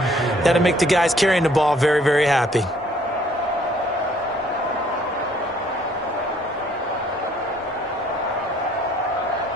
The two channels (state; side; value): normal; both; correlation 0.61